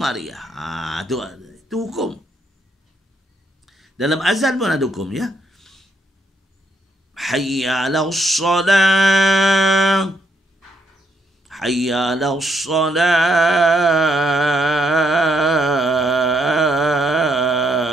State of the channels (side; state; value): both; normal; correlation 0.74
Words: Itu hukum. Dalam azan pun ada hukum, ya. Hayya 'alas salah. Hayya 'alas salah.